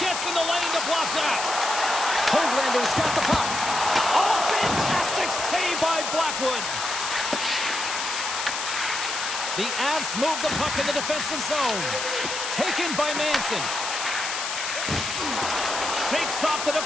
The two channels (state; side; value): noise; left; hiss, 4 dB below the sound